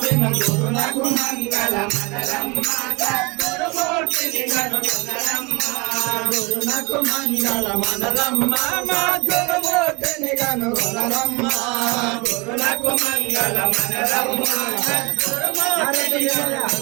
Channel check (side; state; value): left; quieter; 27.0 dB